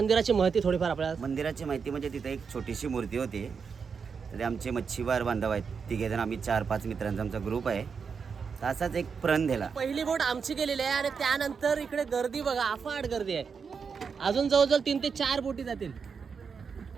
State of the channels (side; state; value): left; quieter; 5.9 dB